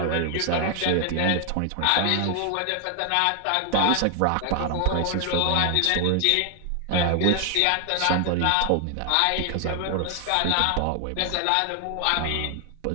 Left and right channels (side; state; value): both; different; correlation 0.00